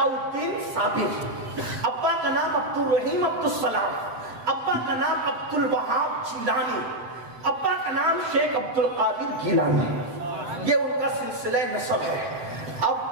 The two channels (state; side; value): late; left; 7.7 ms